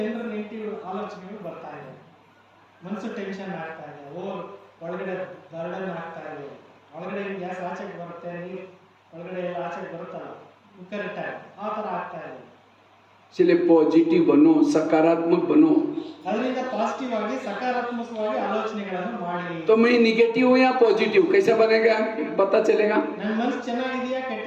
ನೆಗೆಟಿವ್ ಆಲೋಚನೆಗಳು ಬರ್ತಾ ಇದೆ, ಮನಸ್ಸು ಟೆನ್ಷನ್ ಆಗ್ತಾ ಇದೆ, ಒಳಗಡೆ ಬರ್ಡನ್ ಆಗ್ತಾ ಇದೆ, ಒಳಗಡೆ ಗ್ಯಾಸ್ ಆಚೆಗೆ ಬರುತ್ತೆ, ನೀರು ಒಳಗಡೆ ಎಲ್ಲ ಆಚೆಗೆ ಬರುತ್ತಲ್ಲ ಕುಕ್ಕರ್ ಇಟ್ಟಾಗ ಆ ಥರ ಆಗ್ತಾ ಇದೆ. इसलिए पॉजिटिव बनो, सकारात्मक बनो। ಅದರಿಂದ ಪಾಸಿಟಿವ್ ಆಗಿ ಸಕಾರಾತ್ಮಕವಾಗಿ ಆಲೋಚನೆಗಳನ್ನು ಮಾಡಿ. तो मैं निगेटिव हूँ या पॉजिटिव, कैसे बनेगा पता चलेगा? ನನ್ನ ಮನಸ್ಸು ಚೆನ್ನಾಗಿದೆಯಾ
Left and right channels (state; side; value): identical; both; correlation 1.00